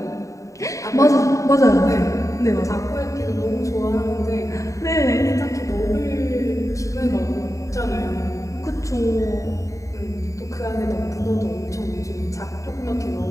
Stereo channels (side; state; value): right; late; 0.16 ms